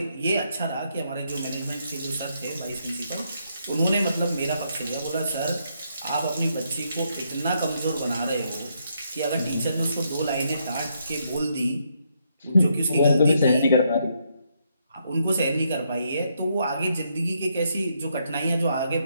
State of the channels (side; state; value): both; inverted; correlation -0.76